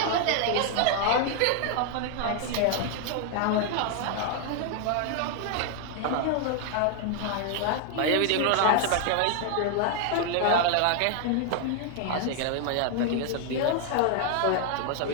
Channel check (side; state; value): both; different; correlation 0.00